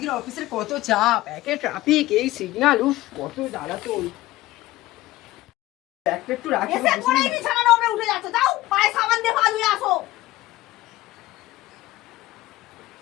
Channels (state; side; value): quieter; right; 17.2 dB